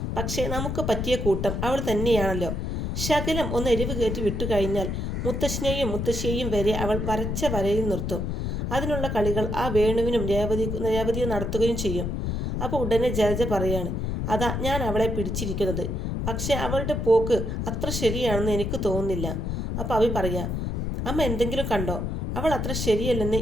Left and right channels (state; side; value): noise; left; rumble, 2 dB below the sound